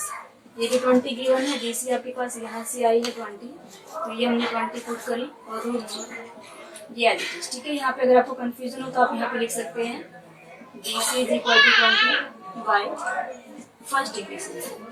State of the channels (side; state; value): both; identical; correlation 1.00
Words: ये भी 20 गिवन है, DC आपके पास यहाँ से आई है 20, तो ये हमने 20 पुट करी और √3 ये एडिट, ठीक है। यहाँ पे अगर आपको कंफ्यूजन हो तो आप यहाँ पे लिख सकते हैं BC is equal to 20 by first degree से,